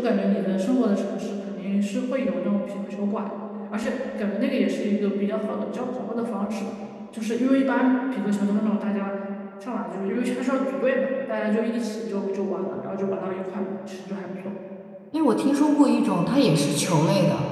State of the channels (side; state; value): both; identical; correlation 1.00